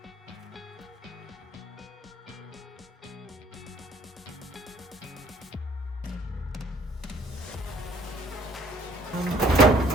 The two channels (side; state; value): both; normal; correlation 0.57